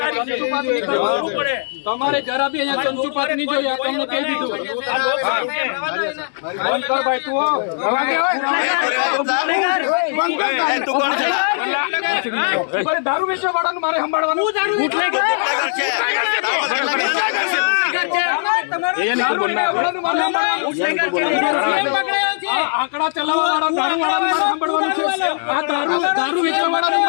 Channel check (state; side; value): silent; right; digital silence